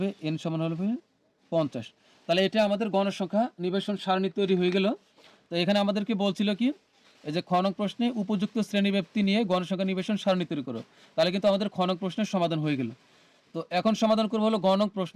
এন সমান হবে 50। তাহলে এটা আমাদের গণসংখ্যা নিবেশন সারণী তৈরি হয়ে গেল। তো এখানে আমাদেরকে বলছিল কি, এই যে খ নং প্রশ্নে উপযুক্ত শ্রেণীব্যাপ্তি নিয়ে গণসংখ্যা নিবেশন সারণী তৈরি করো। তাহলে কিন্তু আমাদের খ নং প্রশ্নের সমাধান হয়ে গেল। তো এখন সমাধান করবো হলো গ নং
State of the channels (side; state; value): both; identical; correlation 1.00